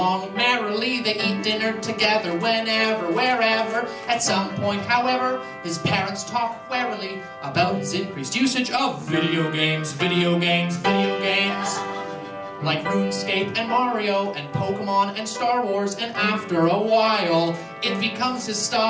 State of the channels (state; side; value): identical; both; correlation 1.00